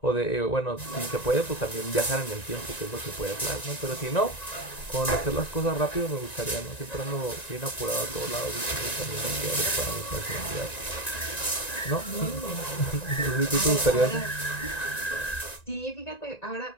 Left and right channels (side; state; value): right; late; 1.9 ms